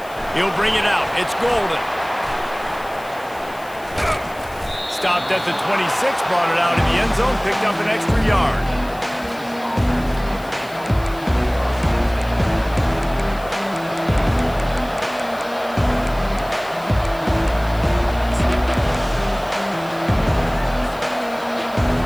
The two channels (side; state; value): left; noise; hiss, 22 dB below the sound